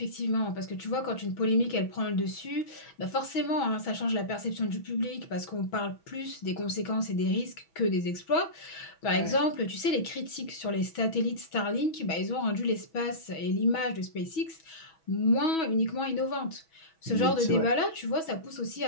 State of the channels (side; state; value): right; late; 6.1 ms